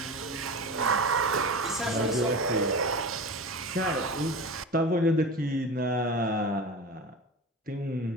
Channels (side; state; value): both; normal; correlation 0.30